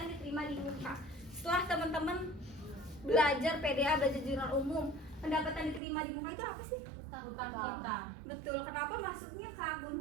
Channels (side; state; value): left; drops out; at 5.8 s